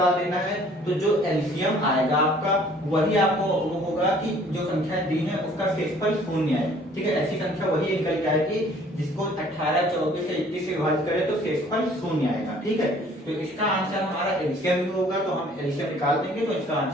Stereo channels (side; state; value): both; normal; correlation 0.55